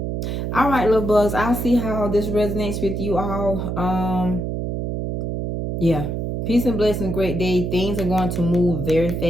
All right, little bugs. I'll see how this resonates with you all. Yeah. Peace and blessings, great day. Things are going to move very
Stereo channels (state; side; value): noise; right; hum, 2 dB below the sound